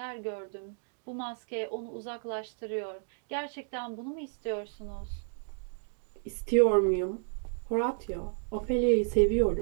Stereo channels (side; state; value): left; silent; digital silence